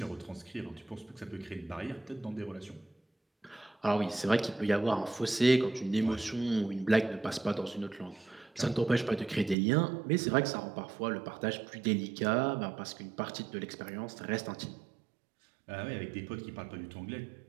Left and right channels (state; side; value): drops out; left; at 9.6 s